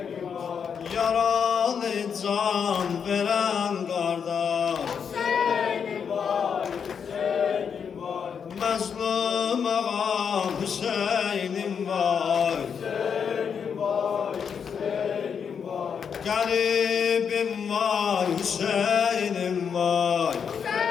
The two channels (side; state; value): right; quieter; 6.9 dB